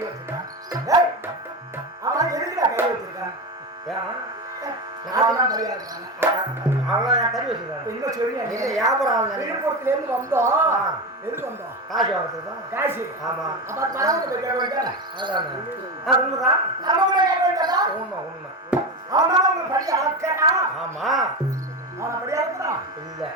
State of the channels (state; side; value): normal; both; correlation 0.19